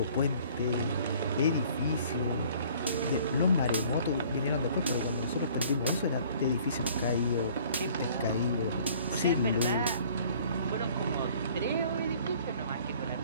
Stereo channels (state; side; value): inverted; both; correlation -0.54